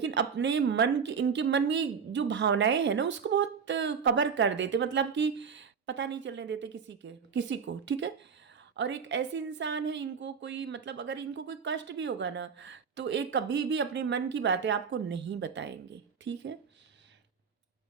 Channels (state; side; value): quieter; left; 6.3 dB